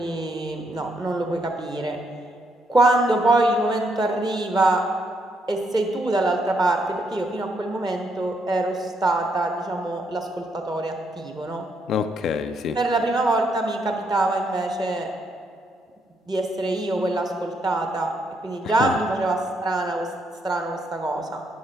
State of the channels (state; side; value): normal; both; correlation 0.76